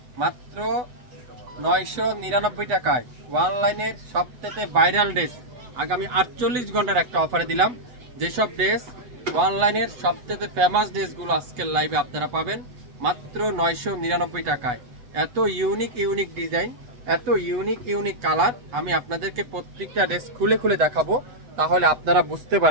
মাত্র 999 টাকায় অনলাইনের সবথেকে ভাইরাল ড্রেস আগামী 48 ঘন্টার একটা অফারে দিলাম। যেসব ড্রেস অনলাইনের সবথেকে ফেমাস ড্রেসগুলো আজকের লাইভে আপনারা পাবেন মাত্র 999 টাকায়। এত ইউনিক ডিজাইন, এত ইউনিক কালার, আমি আপনাদেরকে প্রত্যেকটা ড্রেস খুলে খুলে দেখাবো, তাহলে আপনারা বুঝতে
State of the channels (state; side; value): late; left; 8.1 ms